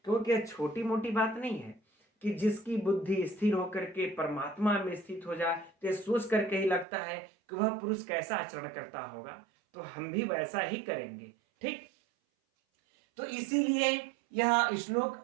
क्योंकि यह छोटी मोटी बात नहीं है कि जिसकी बुद्धि स्थिर होकर के परमात्मा में स्थित हो जाए तो सोच करके ही लगता है कि वह पुरुष कैसा आचरण करता होगा, तो हम भी वैसा ही करेंगे। ठीक, तो इसीलिए यह श्लोक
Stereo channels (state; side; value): drops out; left; at 6.9 s